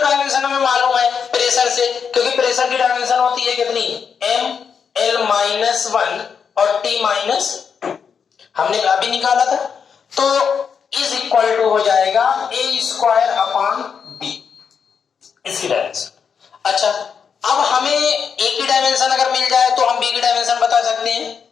हमें मालूम है प्रेशर से, क्योंकि प्रेशर की डायमेंशन होती है कितनी, m l -1 और t -2 हमने अभी निकाला था, तो इज इक्वल टू हो जाएगा a स्क्वायर अपान b, इसकी डायमेंशन। अच्छा, अब हमें a की डायमेंशन अगर मिल जाए तो हम b की डायमेंशन बता सकते हैं।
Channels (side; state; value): right; quieter; 6.6 dB